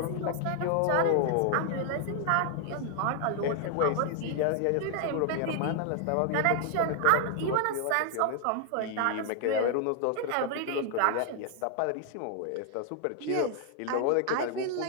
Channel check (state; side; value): different; both; correlation 0.00